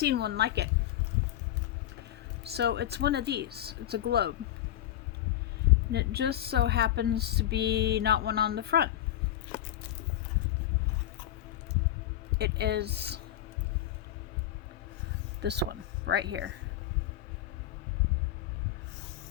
one like it. So, it's one of these. It's a globe. And it just so happens to be not one on the front. It is this one right here.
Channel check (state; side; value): quieter; right; 12.4 dB